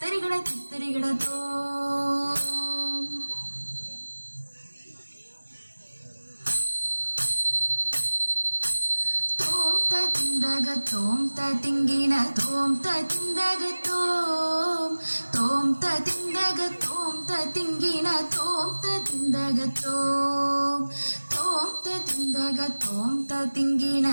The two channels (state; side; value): inverted; both; correlation -1.00